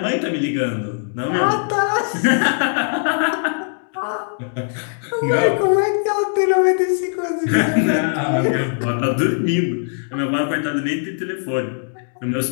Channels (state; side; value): silent; right; digital silence